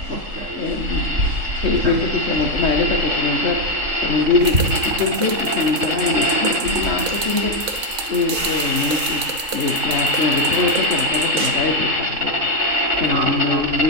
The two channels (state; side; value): late; left; 4.3 ms